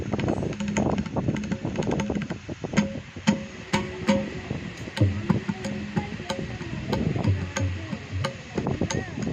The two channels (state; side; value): identical; both; correlation 1.00